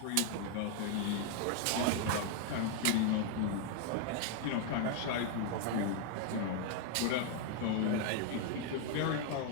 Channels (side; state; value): both; different; correlation 0.00